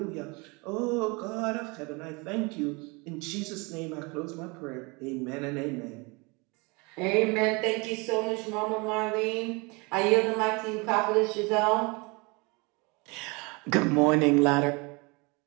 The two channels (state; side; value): quieter; left; 28.0 dB